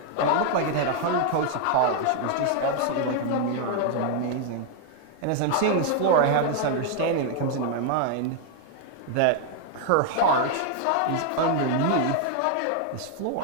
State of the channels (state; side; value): different; both; correlation 0.00